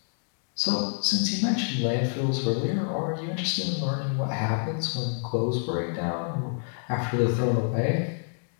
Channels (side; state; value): right; silent; digital silence